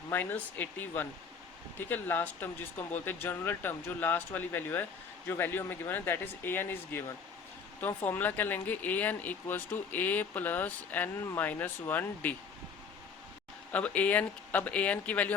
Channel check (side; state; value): right; quieter; 5.8 dB